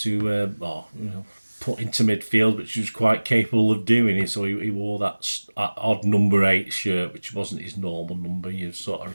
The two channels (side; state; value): both; inverted; correlation -1.00